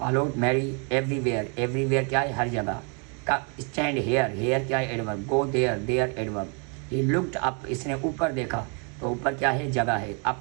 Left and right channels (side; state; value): left; quieter; 36.3 dB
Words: Mary everywhere, everywhere کیا ہے؟ ہر جگہ کا۔ اسٹینڈ ہیئر، ہیئر کیا ہے؟ Adverb. Go there, there adverb. He looked up, اس نے اوپر دیکھا، تو اوپر کیا ہے؟ جگہ ہے۔